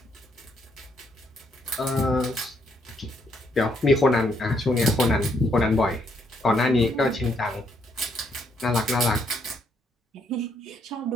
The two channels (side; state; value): both; normal; correlation 0.73